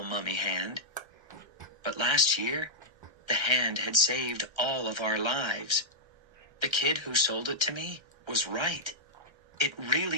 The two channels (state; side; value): late; left; 1.3 ms